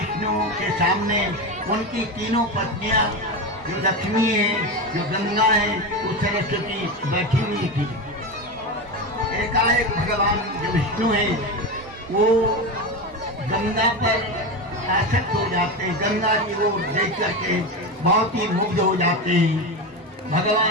के सामने उनकी 3 पत्नियां, जो लक्ष्मी है, जो गंगा है, वो सरस्वती बैठी हुई थी। एकाएक भगवान जो विष्णु है, वो गंगा पर आसक्त हो जाते हैं, गंगा जी को देख करके बहुत ही मुग्ध हो जाते हैं।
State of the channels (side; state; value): both; normal; correlation 0.19